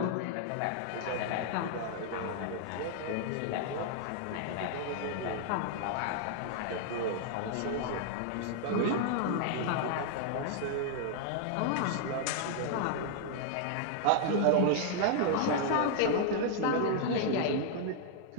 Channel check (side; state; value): both; different; correlation 0.00